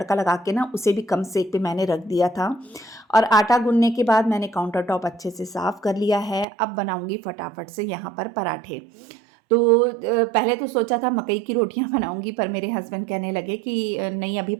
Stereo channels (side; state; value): left; drops out; at 6.5 s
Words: लगा के ना उसे भी कम सेक पे मैंने रख दिया था। और आटा गूंदने के बाद मैंने काउंटर टॉप अच्छे से साफ़ कर लिया है। अब बनाऊंगी फटाफट से यहाँ पर पराठे। तो पहले तो सोचा था मकई की रोटियां बनाऊंगी, पर मेरे हस्बैंड कहने लगे कि नहीं, अभी